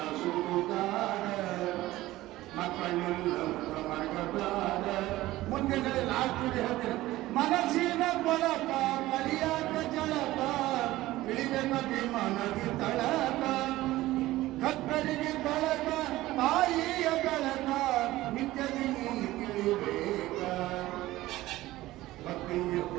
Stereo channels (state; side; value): quieter; left; 16.9 dB